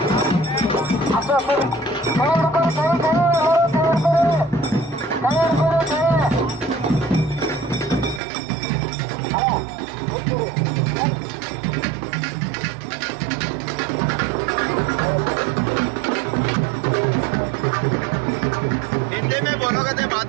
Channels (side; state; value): left; drops out; at 8.2 s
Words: हिंदी में बोलोगे तो